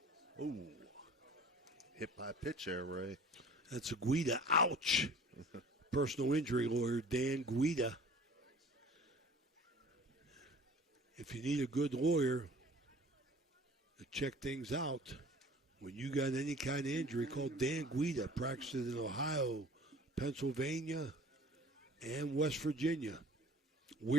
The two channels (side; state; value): both; normal; correlation 0.47